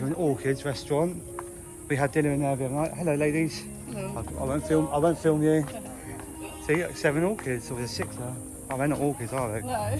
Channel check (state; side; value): identical; both; correlation 1.00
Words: Orchids restaurant. We had dinner in there the other night. Hello, ladies. Hello. I won't film you. See, 7 orchids, or there's 6 there. Oh, they're not orchids, are they?